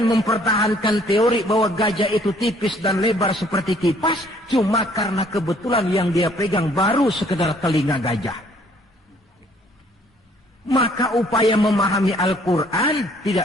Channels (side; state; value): both; normal; correlation 0.61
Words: mempertahankan teori bahwa gajah itu tipis dan lebar seperti kipas, cuma karena kebetulan yang dia pegang baru sekedar telinga gajah. Maka upaya memahami Al-Quran